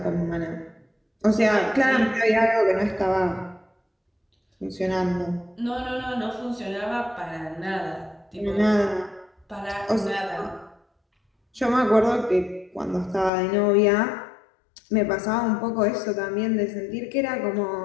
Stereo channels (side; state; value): right; drops out; at 13.3 s